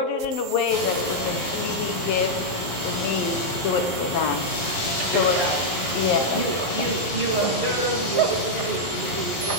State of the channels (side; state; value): right; late; 11 ms